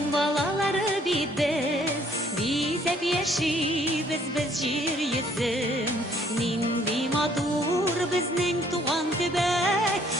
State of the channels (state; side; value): normal; both; correlation 0.63